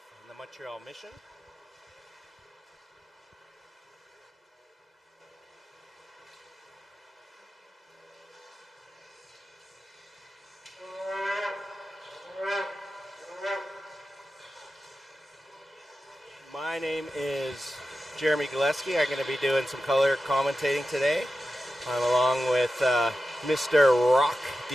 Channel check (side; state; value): both; normal; correlation 0.92